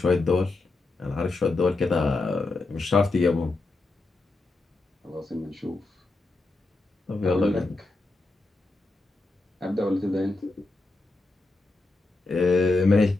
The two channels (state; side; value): quieter; right; 3.2 dB